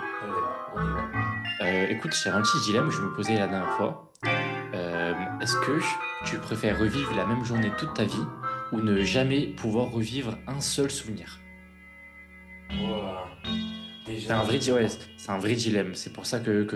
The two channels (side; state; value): both; identical; correlation 1.00